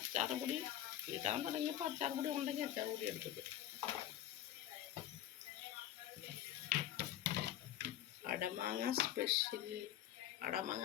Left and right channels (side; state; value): right; quieter; 12.0 dB